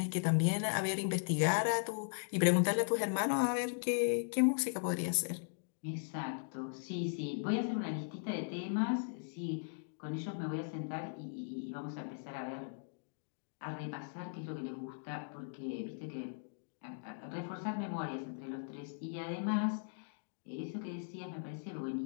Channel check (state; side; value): silent; right; digital silence